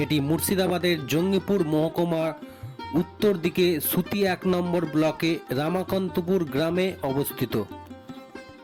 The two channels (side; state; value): both; identical; correlation 1.00